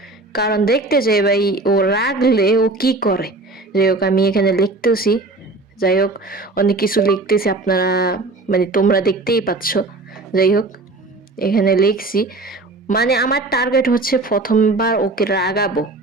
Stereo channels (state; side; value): quieter; left; 3.2 dB